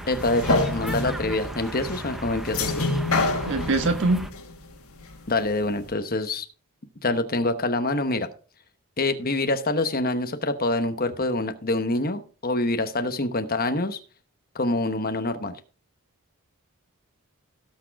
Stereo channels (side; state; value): both; normal; correlation 0.14